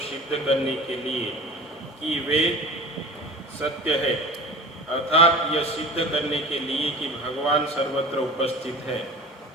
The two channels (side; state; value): both; normal; correlation 0.38